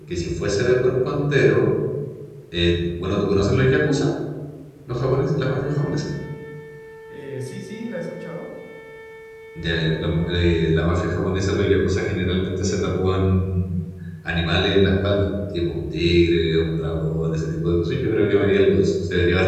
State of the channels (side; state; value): both; identical; correlation 1.00